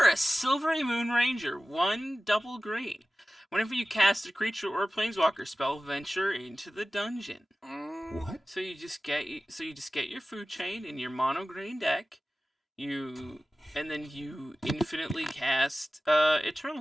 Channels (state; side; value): normal; both; correlation 0.96